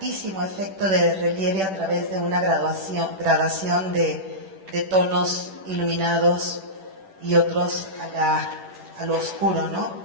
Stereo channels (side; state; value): left; late; 10 ms